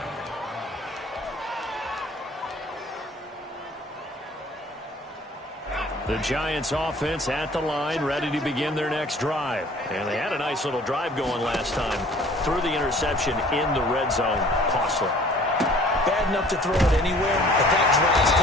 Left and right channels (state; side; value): normal; both; correlation 0.52